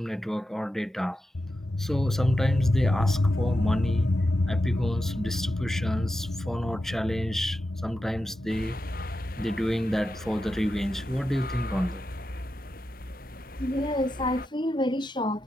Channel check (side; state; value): both; normal; correlation 0.89